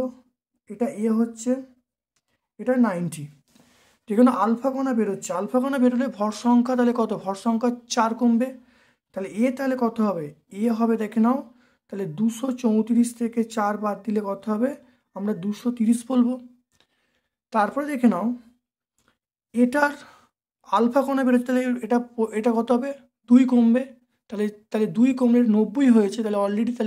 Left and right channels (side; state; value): both; identical; correlation 1.00